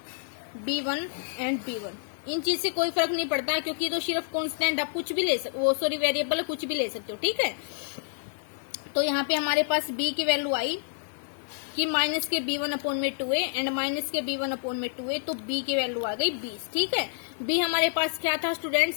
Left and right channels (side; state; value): right; silent; digital silence